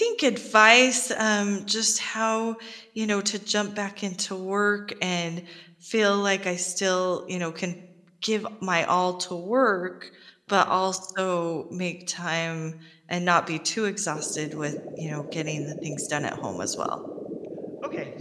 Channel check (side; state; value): both; identical; correlation 1.00